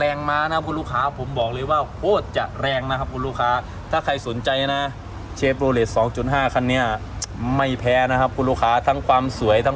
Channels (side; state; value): both; identical; correlation 1.00